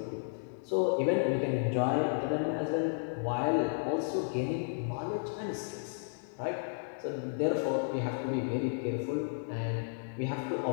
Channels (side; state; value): right; silent; digital silence